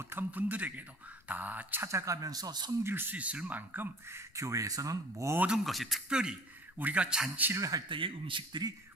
분들에게도 다 찾아가면서 섬길 수 있을 만큼 교회에서는 모든 것이, 특별히 우리가 잔치를 할 때의 음식들이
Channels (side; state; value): left; noise; rumble, 30 dB below the sound